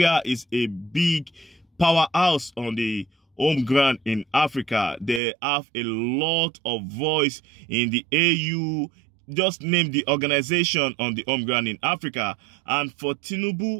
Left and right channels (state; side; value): drops out; left; at 5.2 s